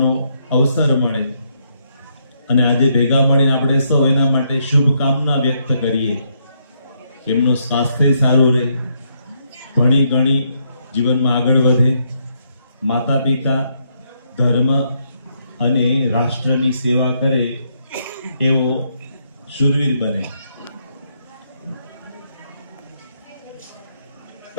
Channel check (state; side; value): inverted; both; correlation -0.75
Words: અવસર મળે અને આજે ભેગા મળીને આપણે સૌ એના માટે શુભકામના વ્યક્ત કરીએ. એમનું સ્વાસ્થ્ય સારું રહે, ભણી ગણી જીવનમાં આગળ વધે, માતા પિતા, ધર્મ અને રાષ્ટ્રની સેવા કરે એવો શૂરવીર બને.